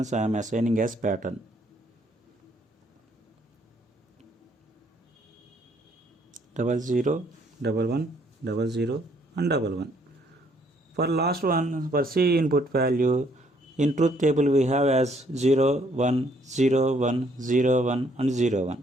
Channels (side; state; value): both; normal; correlation 0.66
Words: I am assigning as pattern. Double 0, 11, 00 and 11. For last one, for C input value, in truth table we have as 0, 1, 0, 1, 0, 1 and 0, 1.